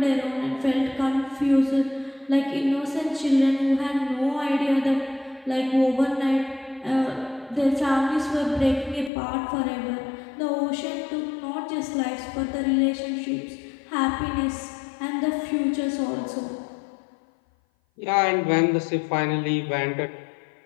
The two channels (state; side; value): drops out; right; at 9.1 s